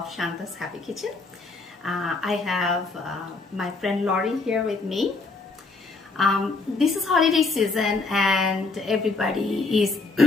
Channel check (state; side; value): quieter; right; 3.7 dB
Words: Shanta's Happy Kitchen. I have my friend Laurie here with me. This is holiday season and everybody is